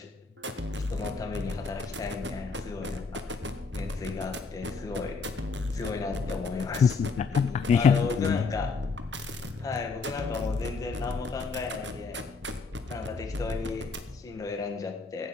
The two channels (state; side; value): quieter; right; 4.6 dB